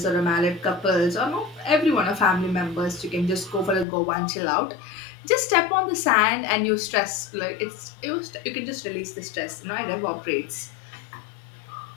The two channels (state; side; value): drops out; right; at 3.9 s